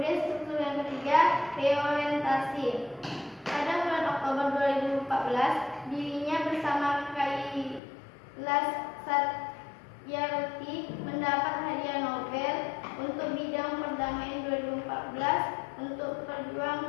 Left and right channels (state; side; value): drops out; right; at 7.8 s